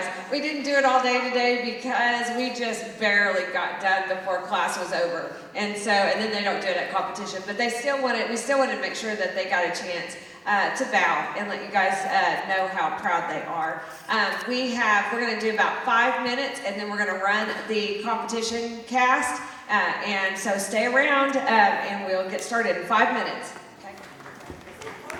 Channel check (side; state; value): both; identical; correlation 1.00